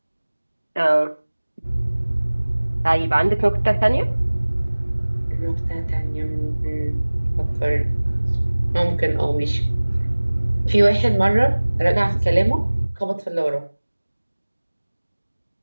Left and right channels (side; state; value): both; inverted; correlation -1.00